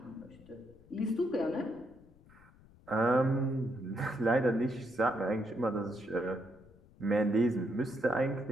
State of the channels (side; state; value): left; noise; rumble, 25 dB below the sound